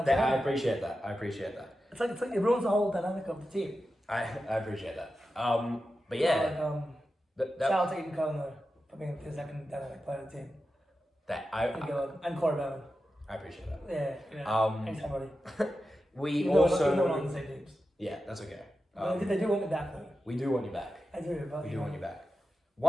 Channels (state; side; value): normal; both; correlation 0.91